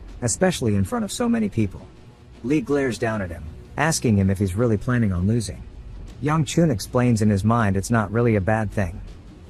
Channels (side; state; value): both; identical; correlation 1.00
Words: especially in front of so many people. Lee glares down at him, asking him if he's really planning on losing. Young Chun explains in his mind it's not really a bad thing.